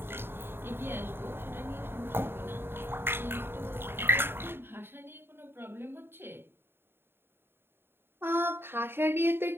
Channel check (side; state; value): left; late; 0.11 ms